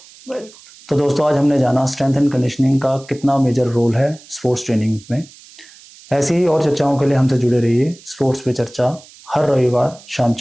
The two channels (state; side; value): noise; right; hiss, 23 dB below the sound